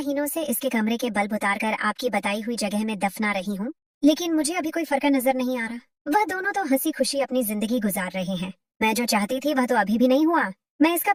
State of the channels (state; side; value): identical; both; correlation 1.00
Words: से इसके कमरे के बल्ब उतारकर आपकी बताई हुई जगह में दफना रही हूँ, लेकिन मुझे अभी कोई फर्क नजर नहीं आ रहा। वह दोनों तो हंसी खुशी अपनी जिंदगी गुजार रहे हैं। मैं जो चाहती थी वह तो अभी भी नहीं हुआ। मैं इसका